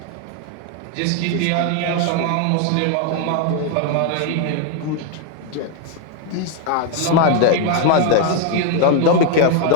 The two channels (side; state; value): both; different; correlation 0.01